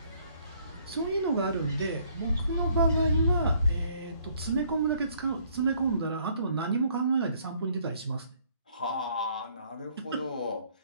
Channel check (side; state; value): both; inverted; correlation -0.64